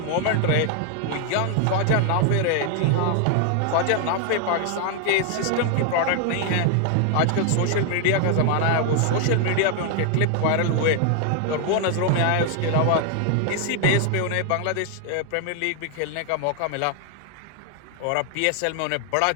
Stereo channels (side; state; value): both; different; correlation 0.00